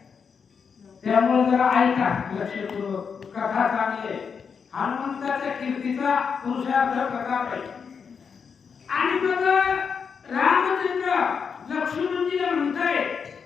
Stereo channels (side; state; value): right; quieter; 6.2 dB